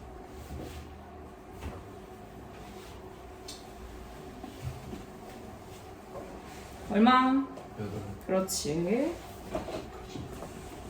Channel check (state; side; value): identical; both; correlation 1.00